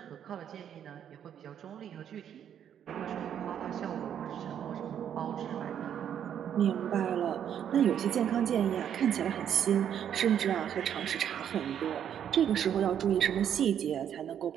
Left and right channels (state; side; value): quieter; left; 9.3 dB